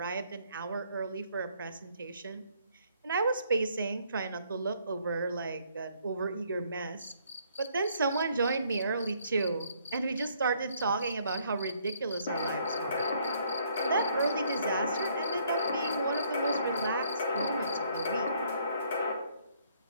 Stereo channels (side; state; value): both; inverted; correlation -0.66